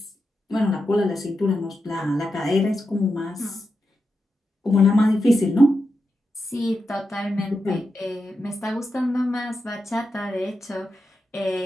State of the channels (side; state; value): both; normal; correlation 0.88